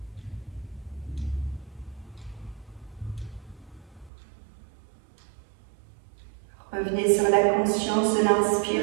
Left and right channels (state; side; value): drops out; left; at 4.1 s